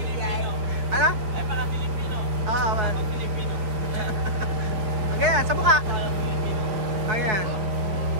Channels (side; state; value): left; late; 4.4 ms